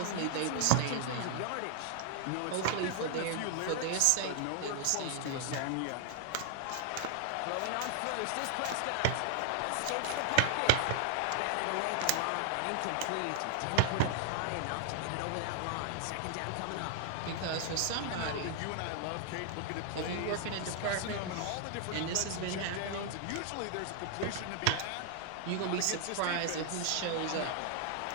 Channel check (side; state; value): both; different; correlation 0.00